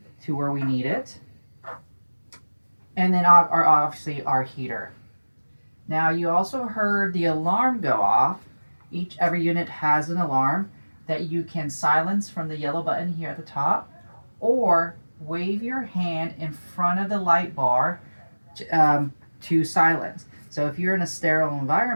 to where we need it. And then obviously our heater. Now you also heard the alarm go off. Every unit has an alarm that you can silence from the yellow button here at the top, or wave your hand in front of the light bar to silence. So if you're in a sterile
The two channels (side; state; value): both; inverted; correlation -1.00